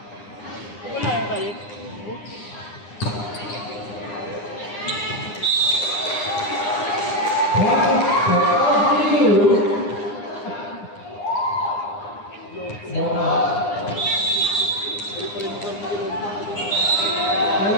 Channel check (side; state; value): right; late; 9.8 ms